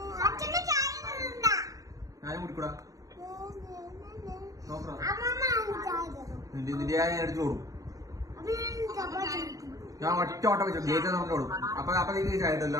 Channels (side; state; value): left; late; 0.17 ms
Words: ഞാനും കുടിക്കൂടാ നോക്കാം. നിന്റെ ഞാൻ എടുത്തു കൊടുക്കും. ഞാൻ ഒറ്റ ഓട്ടം വെച്ചു ഗേറ്റ് നമുക്ക് കൊടുക്കും. അപ്പൊ നീ ചായട്ടല്ലോ.